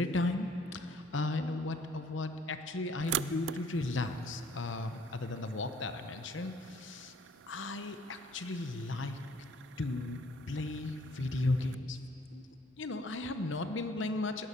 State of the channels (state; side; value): normal; both; correlation 0.59